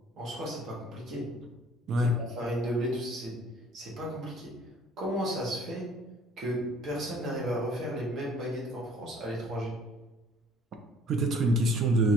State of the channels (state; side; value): normal; both; correlation 0.55